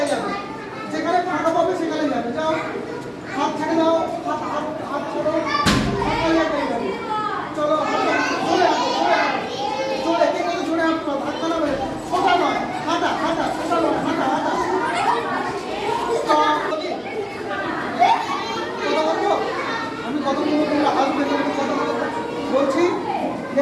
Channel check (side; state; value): both; identical; correlation 1.00